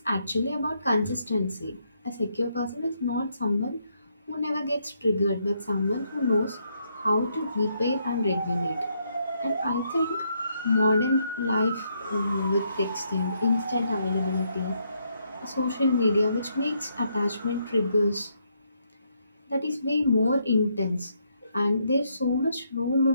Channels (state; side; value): inverted; both; correlation -0.75